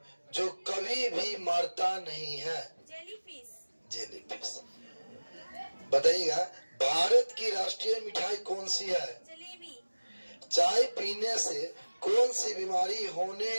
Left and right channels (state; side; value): inverted; both; correlation -1.00